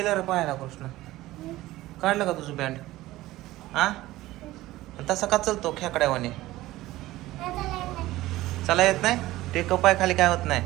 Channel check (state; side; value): quieter; left; 16.9 dB